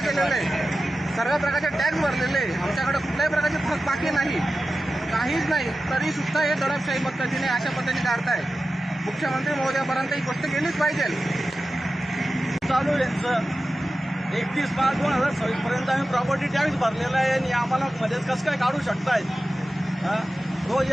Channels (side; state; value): both; normal; correlation 0.94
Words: आहे. सर्व प्रकारचे टॅक्स भरलेले आहे. आमच्याकडे कुठल्याही प्रकारची फरक बाकी नाही, काहीच नाही. तरी सुद्धा हे दडपशाही पद्धतीने अशा पद्धतीने काढताय. मुख्यमंत्री महोदयापर्यंत ही गोष्ट गेलीच पाहिजे. चालू यांचं 31/5/2026 पर्यंत आम्ही प्रॉपर्टी टॅक्स भरलेला आहे आणि आम्हाला मध्येच कसं काय काढू शकतायत? रोज